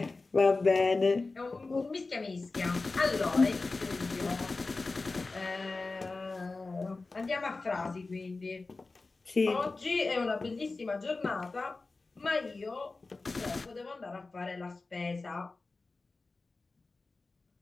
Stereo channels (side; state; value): right; quieter; 3.6 dB